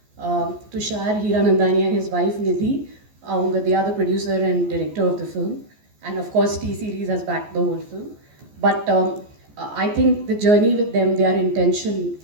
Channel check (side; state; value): left; late; 14 ms